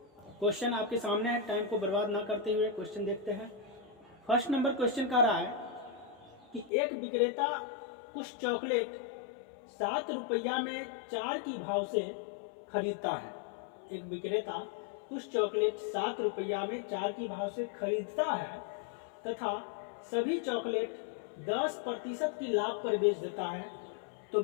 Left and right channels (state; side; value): drops out; right; at 6.7 s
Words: क्वेश्चन आपके सामने है, टाइम को बर्बाद ना करते हुए क्वेश्चन देखते हैं। फर्स्ट नंबर क्वेश्चन कह रहा है कि एक विक्रेता कुछ चॉकलेट 7 रुपया में 4 की भाव से खरीदता है। एक विक्रेता कुछ चॉकलेट 7 रुपया में 4 की भाव से खरीदता है तथा सभी चॉकलेट 10% की लाभ पर बेच देता है, तो